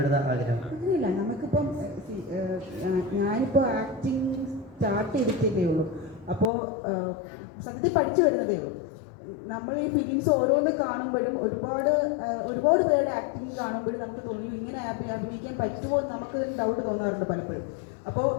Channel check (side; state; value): right; drops out; at 6.5 s